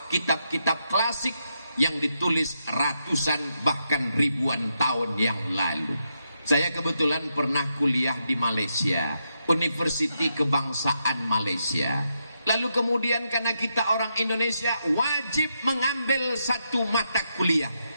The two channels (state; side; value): inverted; both; correlation -0.82